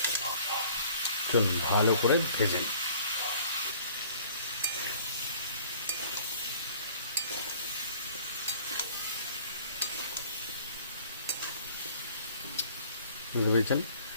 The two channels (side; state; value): both; inverted; correlation -0.52